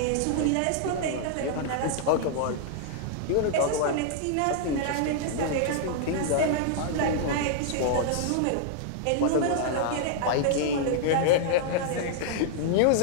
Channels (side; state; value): both; different; correlation -0.01